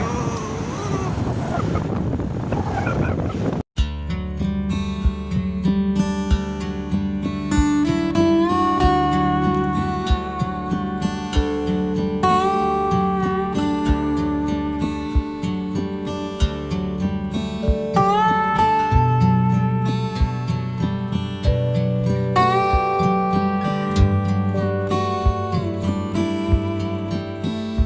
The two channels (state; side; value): identical; both; correlation 1.00